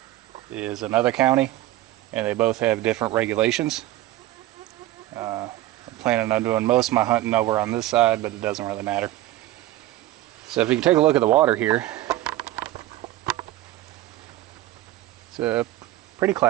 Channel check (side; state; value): left; quieter; 15.6 dB